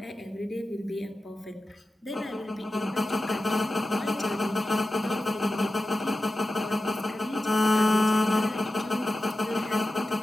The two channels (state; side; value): normal; both; correlation 0.93